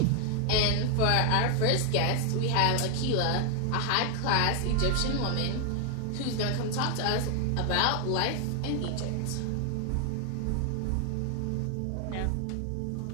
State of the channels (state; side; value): different; both; correlation 0.00